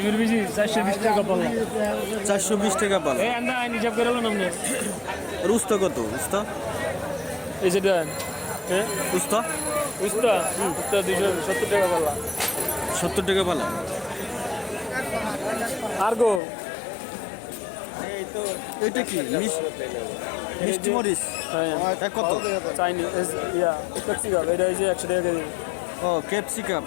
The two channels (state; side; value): drops out; right; at 16.4 s